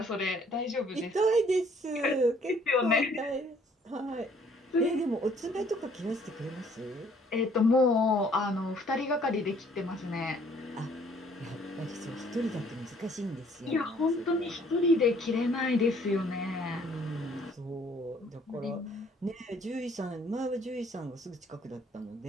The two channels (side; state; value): both; normal; correlation 0.60